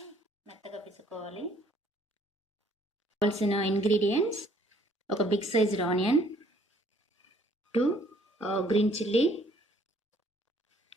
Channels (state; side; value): normal; both; correlation 0.62